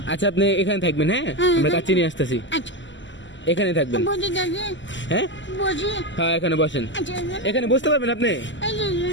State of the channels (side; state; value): right; late; 0.54 ms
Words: আচ্ছা, আপনি এখানে থাকবেন, হ্যাঁ? আমরা কাচ্চি নিয়ে আসতেছি, আচ্ছা, এখানে থাকবেন। বসে থাকি। হ্যাঁ বসি। হ্যাঁ, এখানে বসেন। আচ্ছা, এখানে বসতে পারবেন আপনি? এই যে,